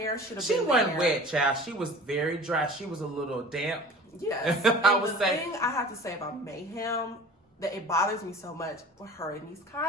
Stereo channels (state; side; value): normal; both; correlation 0.42